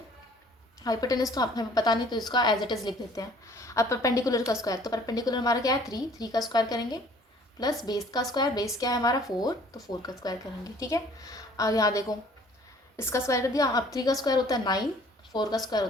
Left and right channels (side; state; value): both; normal; correlation 0.55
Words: हाइपोटेनस तो हमें पता नहीं, तो इसका एज इट इज़ लिख देते हैं। अब परपेंडिकुलर का स्क्वायर, तो परपेंडिकुलर हमारा क्या है 3 का स्क्वायर करेंगे, प्लस बेस का स्क्वायर, बेस क्या है हमारा 4, तो 4 का स्क्वायर करेंगे। ठीक है, अब यहाँ देखो इसका स्क्वायर कर दिया। अब 3 का स्क्वायर होता है 9, 4 का स्क्वायर